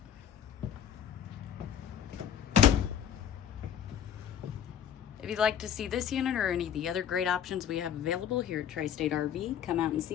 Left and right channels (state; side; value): quieter; right; 9.1 dB